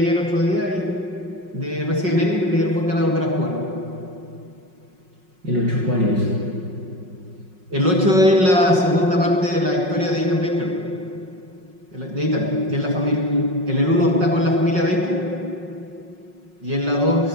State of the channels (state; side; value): late; left; 5.5 ms